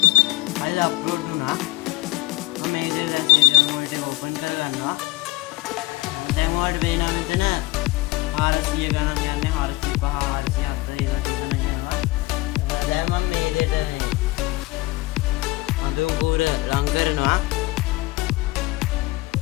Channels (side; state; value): right; quieter; 20.6 dB